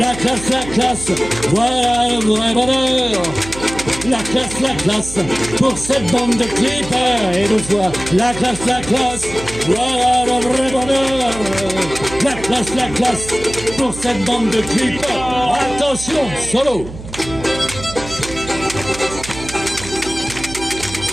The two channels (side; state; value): right; noise; hum, 13 dB below the sound